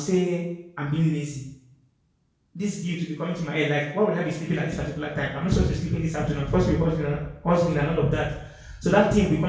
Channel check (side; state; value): both; identical; correlation 1.00